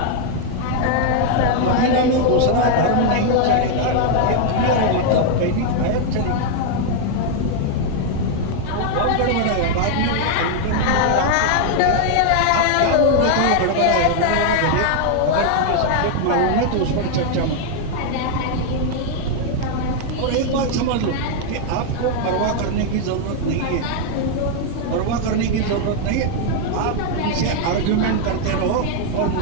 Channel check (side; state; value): both; different; correlation 0.00